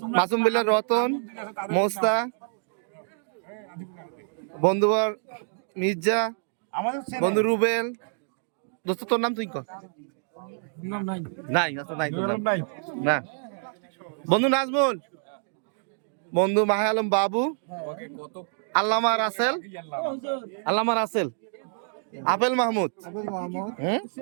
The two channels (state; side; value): silent; left; 60 dB below the other